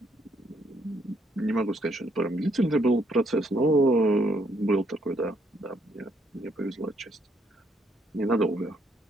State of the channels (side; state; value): both; normal; correlation 0.71